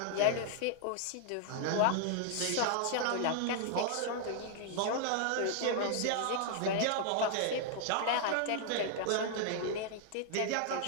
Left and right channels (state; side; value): different; both; correlation 0.00